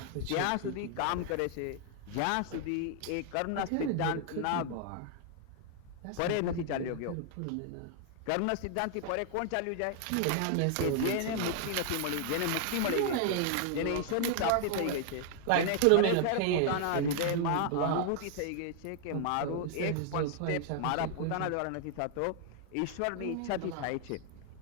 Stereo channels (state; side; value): different; both; correlation 0.00